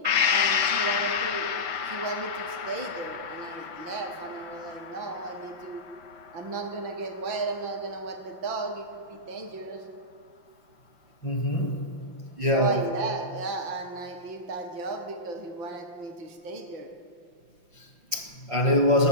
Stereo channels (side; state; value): left; late; 5.8 ms